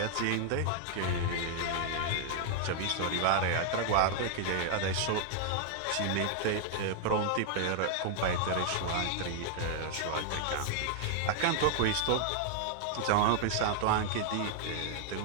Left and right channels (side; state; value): both; different; correlation 0.00